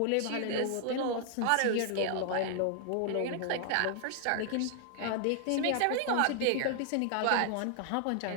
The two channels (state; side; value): different; both; correlation 0.00